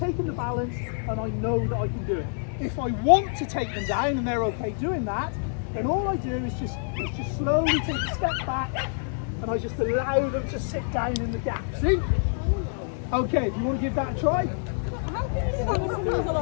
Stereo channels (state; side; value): silent; right; digital silence